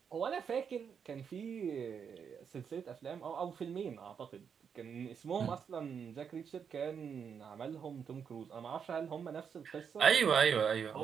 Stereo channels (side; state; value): left; quieter; 7.0 dB